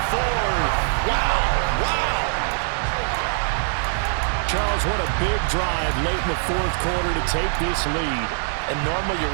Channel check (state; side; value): silent; left; 64 dB below the other